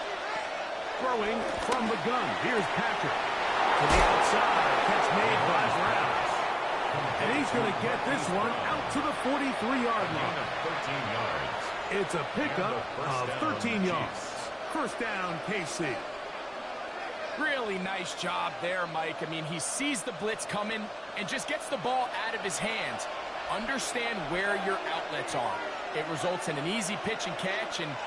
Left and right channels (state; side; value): identical; both; correlation 1.00